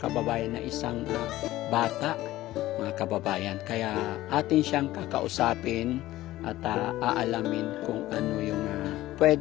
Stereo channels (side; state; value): right; quieter; 16.0 dB